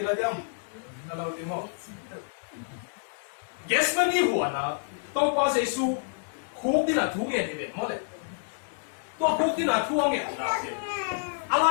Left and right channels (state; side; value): silent; right; digital silence